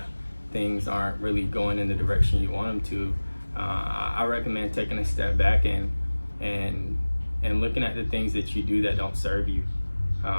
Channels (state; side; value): inverted; both; correlation -1.00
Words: things aren't really going in the direction you want them to, I recommend taking a step back and looking at the things that you do that don't serve you.